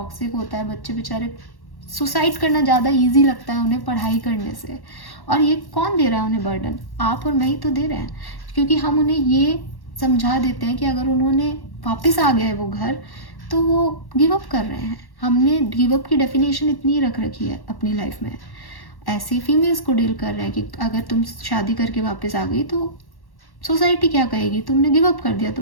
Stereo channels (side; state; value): right; late; 1.1 ms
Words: होता है, बच्चे बेचारे सुसाइड करना ज़्यादा ईजी लगता है उन्हें पढ़ाई करने से। और ये कौन दे रहा है उन्हें बर्डन? आप और मैं ही तो दे रहे हैं, क्योंकि हम उन्हें ये समझा देते हैं कि अगर उन्होंने वापस आ गए वो घर तो वो गिव अप कर रहे हैं। हमने गिव अप की डेफिनेशन इतनी रख रखी है अपनी लाइफ में। ऐसे फीमेल्स को डील कर रहे हैं कि अगर तुम शादी करके वापस आ गई तो सोसाइटी क्या कहेगी, तुमने गिव अप कर दिया,